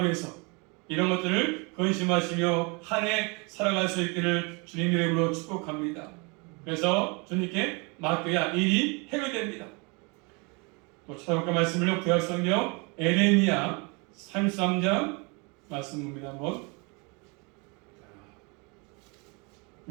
위해서 이런 것들을 근심하시며 한 해 살아갈 수 있기를 주님 이름으로 축복합니다. 그래서 주님께 맡겨야 일이 해결됩니다. 또 찾아볼까 말씀을요. 구약성경 에레미야 33장 말씀 봅니다. 한번.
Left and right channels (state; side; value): quieter; left; 30.6 dB